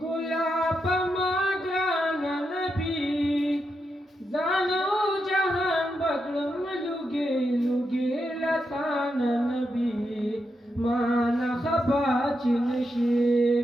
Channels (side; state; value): both; normal; correlation 0.85